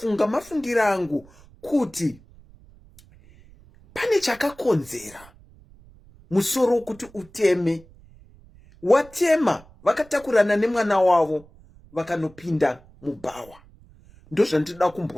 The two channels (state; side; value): noise; right; rumble, 25 dB below the sound